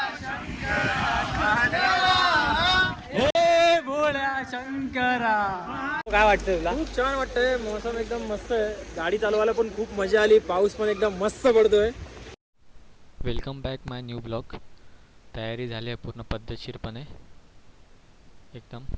शंकरा. काय वाटतं तुला? खूप छान वाटतंय. मौसम एकदम मस्त आहे. गाडी चालवायला पण खूप मजा आली. पाऊस पण एकदम मस्त पडतोय. वेलकम बॅक माय न्यू ब्लॉग. तयारी झाली आहे पूर्ण पद्धतशीरपणे एकदम.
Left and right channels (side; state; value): both; identical; correlation 1.00